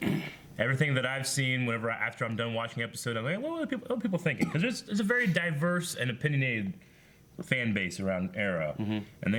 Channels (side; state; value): both; identical; correlation 1.00